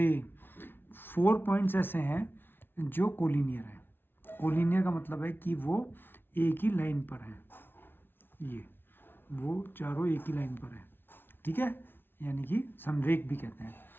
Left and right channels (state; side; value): late; right; 0.10 ms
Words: 4 पॉइंट्स ऐसे हैं जो कोलिनियर है। कोलिनियर का मतलब है कि वो एक ही लाइन पर है। ये वो चारों एक ही लाइन पर है, ठीक है, यानी कि समरेख भी कहते हैं।